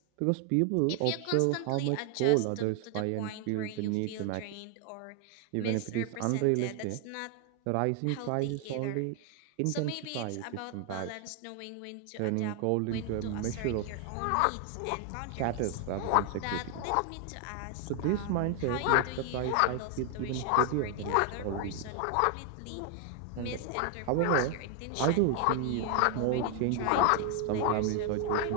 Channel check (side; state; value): both; different; correlation 0.00